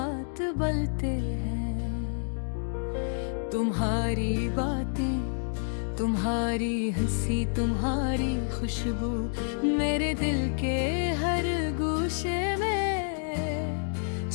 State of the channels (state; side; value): silent; right; digital silence